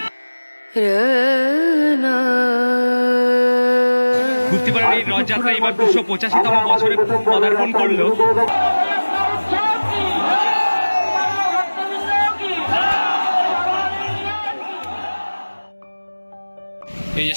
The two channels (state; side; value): inverted; both; correlation -1.00